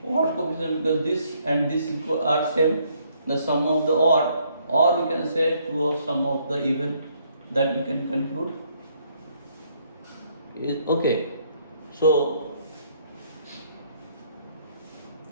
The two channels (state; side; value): inverted; both; correlation -0.68